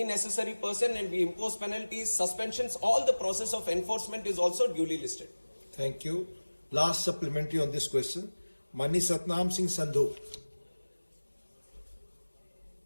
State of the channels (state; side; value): inverted; both; correlation -1.00